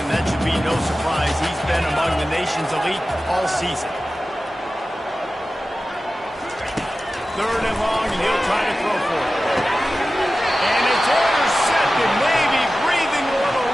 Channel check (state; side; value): normal; both; correlation 0.95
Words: that should be no surprise. He's been among the nation's elite all season. 3rd and long, and he'll try to throw for it. And it's intercepted, maybe breathing a little